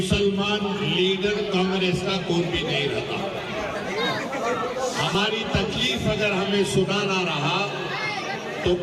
लीडर कांग्रेस का कोई भी नहीं रहा। हमारी तकलीफ अगर हमें सुनाना रहा तो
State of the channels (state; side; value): identical; both; correlation 1.00